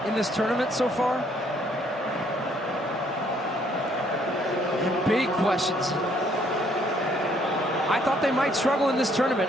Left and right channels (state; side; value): normal; both; correlation 0.66